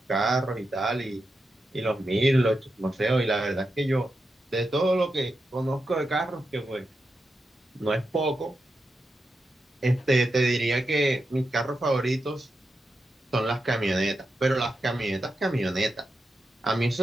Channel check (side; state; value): both; normal; correlation 0.88